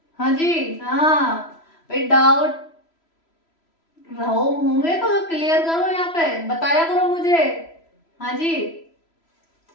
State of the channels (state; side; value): late; right; 3.0 ms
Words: हाँ जी, हाँ भाई, डाउट रहो होंगे तो क्लियर करो, यहाँ पे बताया करो मुझे। हाँ जी,